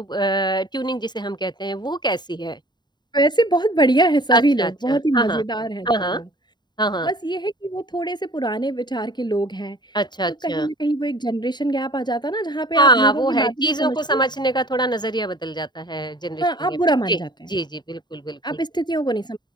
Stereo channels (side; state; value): right; late; 0.21 ms